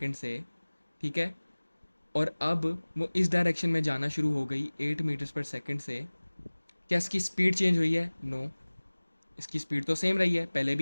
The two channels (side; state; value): both; inverted; correlation -1.00